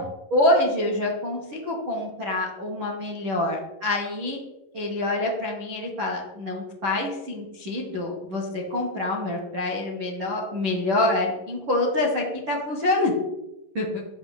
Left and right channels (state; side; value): late; left; 10 ms